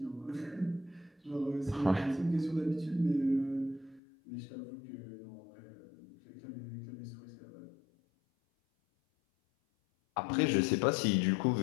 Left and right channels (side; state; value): right; drops out; at 4.0 s